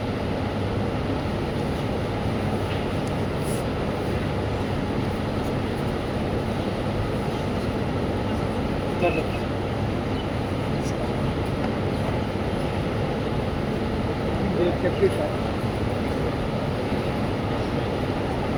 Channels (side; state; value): both; identical; correlation 1.00